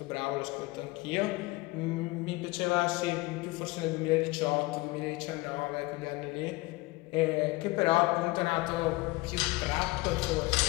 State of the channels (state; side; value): quieter; right; 22.3 dB